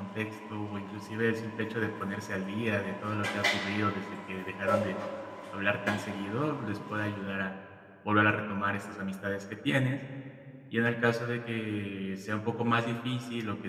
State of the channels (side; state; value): both; identical; correlation 1.00